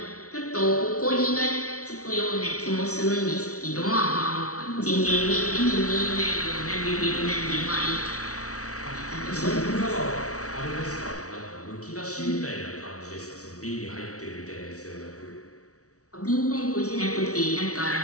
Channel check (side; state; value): right; late; 0.65 ms